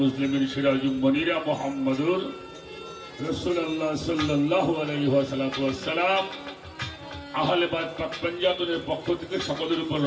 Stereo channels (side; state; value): both; identical; correlation 1.00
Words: মুসলিমিন সিরাজুল মুনিরা মুহাম্মদুর রাসূলুল্লাহ সাল্লাল্লাহু আলাইহি ওয়াসাল্লাম আহলে বাইত পাক পঞ্জাবের পক্ষ থেকে সকলের উপর